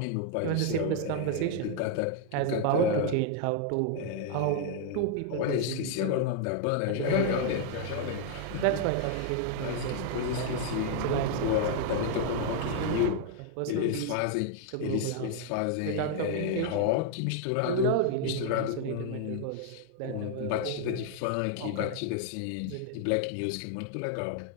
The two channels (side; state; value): both; different; correlation 0.00